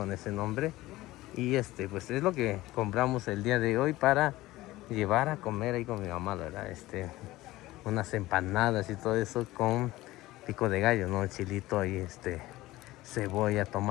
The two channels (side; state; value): right; quieter; 17.8 dB